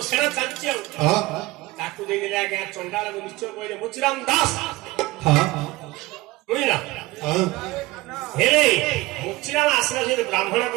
ସେଣା ଚାଲିଛି ଆଉ ତାକୁ ଦେଇଦେଲେ ଆଜ୍ଞା ଚଣ୍ଡାଳକୁ ନିଶ୍ଚୟ କହିଲେ ମୁଚିରାମ ଦାସ ବୁଝିଲା ହେଲେ ମୁଚିରାମ ଆସିଲା ସେ ବ୍ରାହ୍ମଣ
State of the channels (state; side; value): quieter; left; 19.7 dB